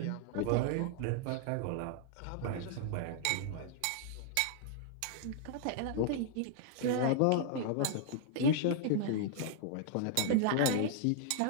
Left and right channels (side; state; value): both; different; correlation 0.00